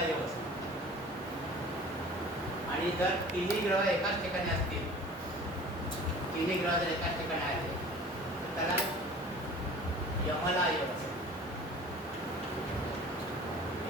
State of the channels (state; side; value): normal; both; correlation 0.43